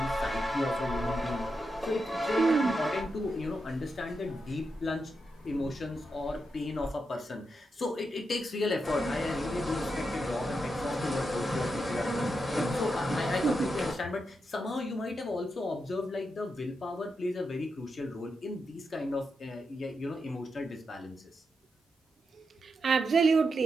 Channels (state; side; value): normal; both; correlation 0.86